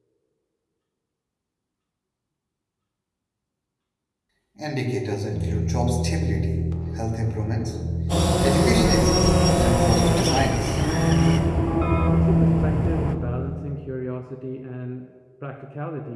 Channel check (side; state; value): both; identical; correlation 1.00